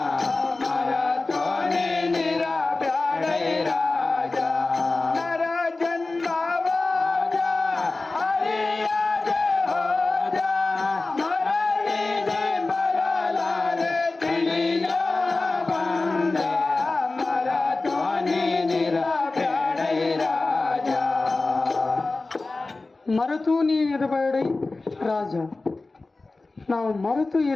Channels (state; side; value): quieter; right; 3.4 dB